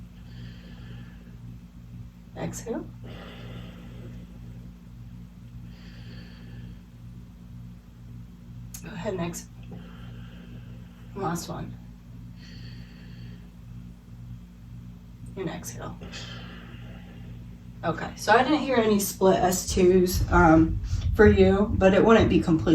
Exhale. Go ahead and exhale. Last one. And exhale. Okay, so I didn't hear any split S2s for you, but it wouldn't be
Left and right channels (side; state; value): both; identical; correlation 1.00